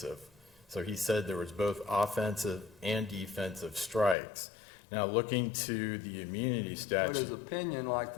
So he said there was both offensive and defensive strikes. Now, looking to the immunity But statute. his opinion, like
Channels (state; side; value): drops out; right; at 4.2 s